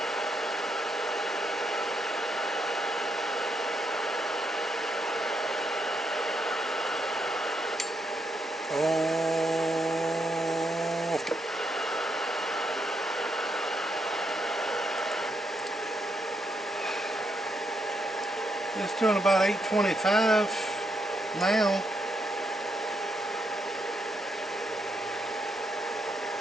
It's doing about 825 now.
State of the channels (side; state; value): both; normal; correlation 0.78